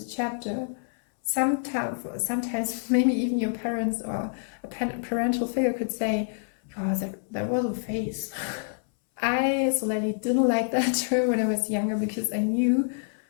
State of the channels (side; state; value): right; silent; 60 dB below the other